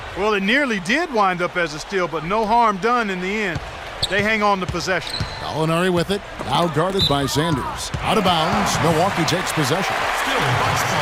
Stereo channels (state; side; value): identical; both; correlation 1.00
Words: Well, it nearly did wind up as a steal, but no harm done in the end. They hang on to possession. Gallinari with it, now guarded by Sanders. Out of bounds, Milwaukee takes possession. Still Bucks ball.